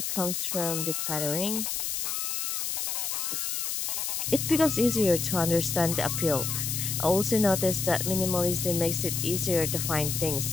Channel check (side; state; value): left; noise; hiss, 1 dB below the sound